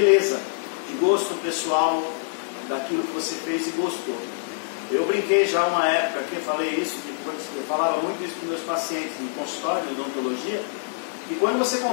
de gosto pessoal, daquilo que você fez e gostou. Eu brinquei já uma época aqui, eu falei isso, eu falava muito isso para meus pacientes no consultório de odontologia, e quando você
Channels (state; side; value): silent; right; 62 dB below the other